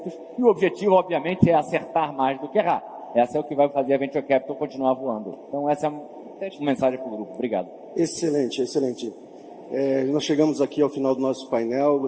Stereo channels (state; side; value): identical; both; correlation 1.00